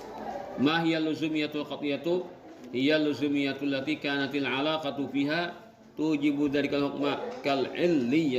Ma hiya luzumiyatul qat'iyatu? Hiya luzumiyatul lati kanatil alaqatu fiha tujibu dzalikal hukma kal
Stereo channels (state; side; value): identical; both; correlation 1.00